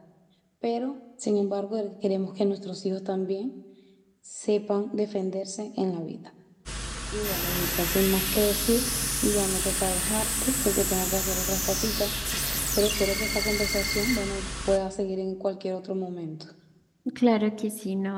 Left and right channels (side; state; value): both; identical; correlation 1.00